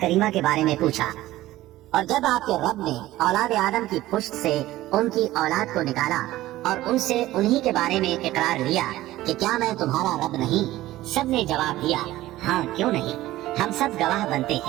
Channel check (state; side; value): quieter; left; 16.0 dB